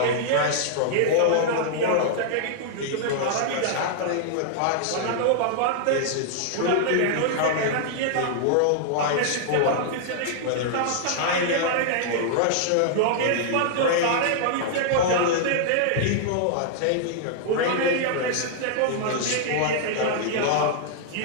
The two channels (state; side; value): different; both; correlation -0.01